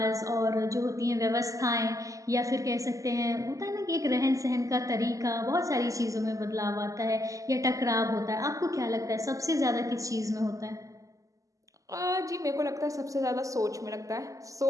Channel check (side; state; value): left; late; 0.16 ms